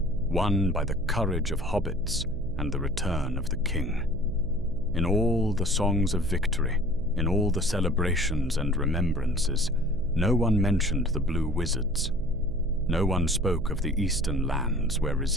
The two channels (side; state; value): right; noise; hum, 8 dB below the sound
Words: won by the courage of hobbits and the return of the king. In all the songs of victory, in all the celebrations and remembrances, no one mentioned the Blue Wizards. No one spoke of the eastern lands where